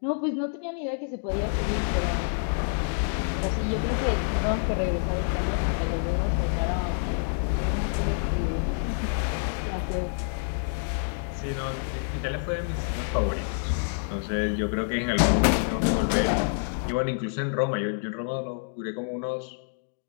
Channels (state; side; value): silent; right; digital silence